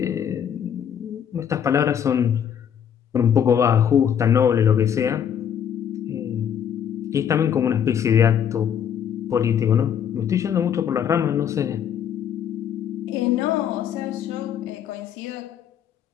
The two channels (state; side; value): quieter; right; 8.7 dB